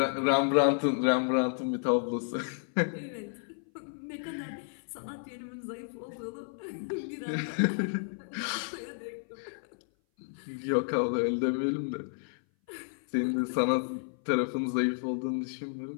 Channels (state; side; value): silent; right; 57 dB below the other